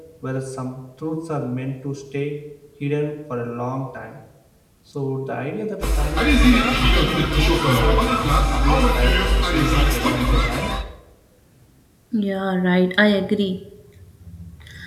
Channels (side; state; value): both; identical; correlation 1.00